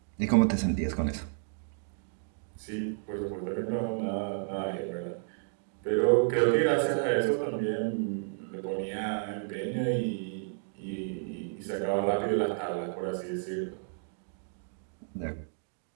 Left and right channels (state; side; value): silent; left; digital silence